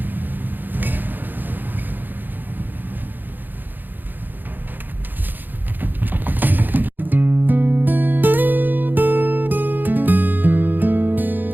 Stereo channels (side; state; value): left; late; 0.089 ms